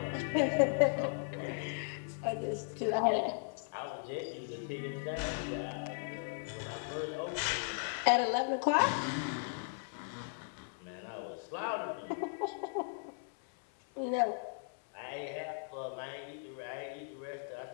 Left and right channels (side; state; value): right; silent; 53 dB below the other